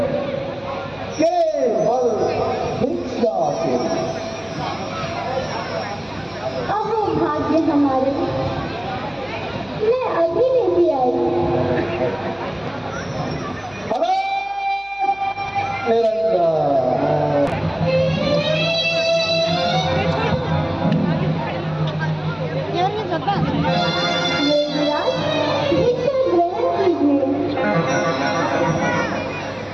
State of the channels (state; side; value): noise; right; hum, 28 dB below the sound